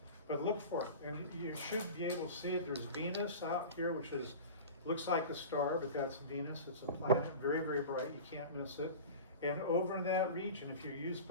But look for it, and you should be able to see it. There's Venus out here, which looks like a star, but that's Venus. It's a planet, very, very bright. You can't miss it. And over in that region, if you use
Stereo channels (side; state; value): both; inverted; correlation -0.34